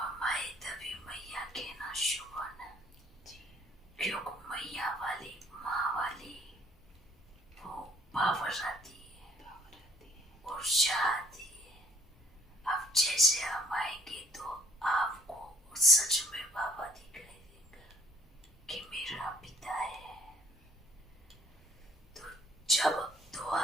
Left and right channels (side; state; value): both; normal; correlation 0.60